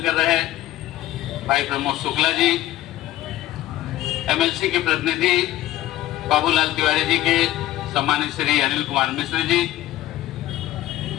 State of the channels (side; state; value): right; quieter; 14.7 dB